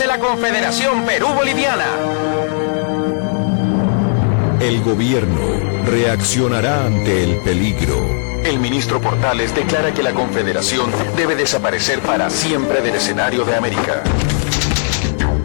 la Confederación Perú-Boliviana. El gobierno reaccionará ante el peligro. El ministro Portales declara que la Confederación debe desaparecer para siempre del escenario de América.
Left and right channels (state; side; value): silent; right; 55 dB below the other